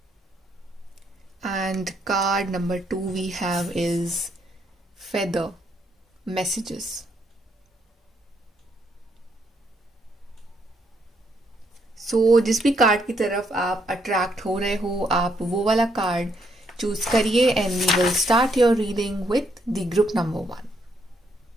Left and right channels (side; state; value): both; normal; correlation 0.73